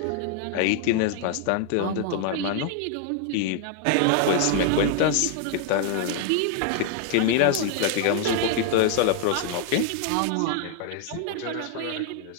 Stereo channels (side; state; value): both; different; correlation 0.00